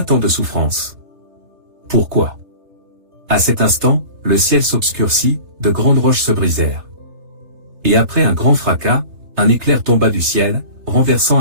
tant de souffrance? Pourquoi? À cet instant, le ciel s'obscurcit, de grandes roches se brisèrent. Et après un grand fracas, un éclair tomba du ciel, renversant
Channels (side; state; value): left; late; 3.3 ms